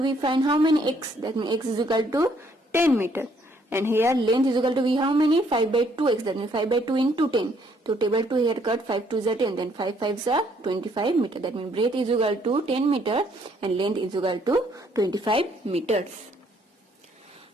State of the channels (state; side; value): normal; both; correlation 0.67